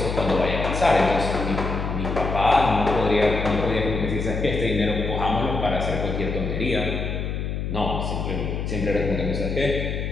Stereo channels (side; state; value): left; noise; hum, 3 dB below the sound